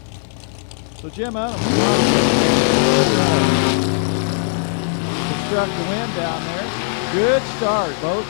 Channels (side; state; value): right; silent; 60 dB below the other